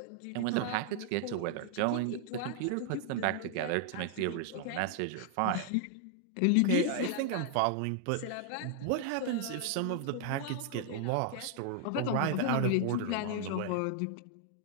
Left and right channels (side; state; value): both; different; correlation 0.00